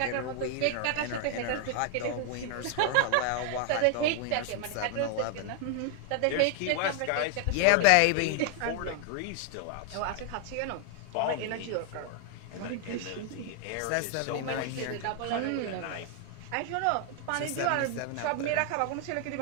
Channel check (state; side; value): different; both; correlation 0.00